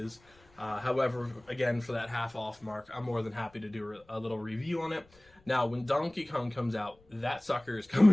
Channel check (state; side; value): noise; left; rumble, 30 dB below the sound